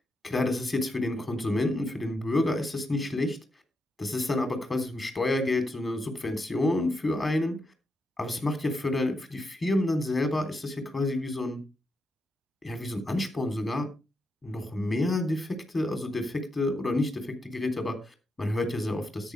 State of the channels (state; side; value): normal; both; correlation 0.83